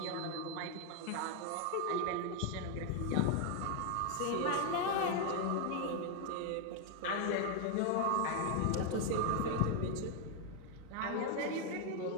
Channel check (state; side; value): different; both; correlation 0.00